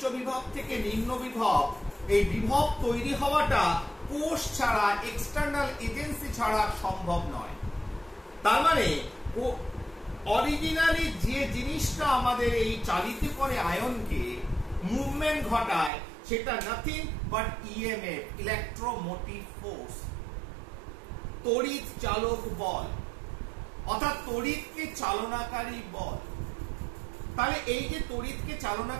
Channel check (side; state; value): left; drops out; at 15.9 s